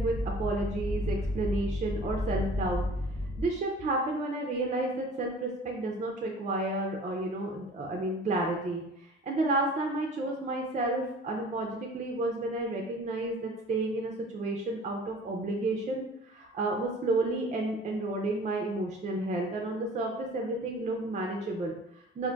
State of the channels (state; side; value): normal; both; correlation 0.46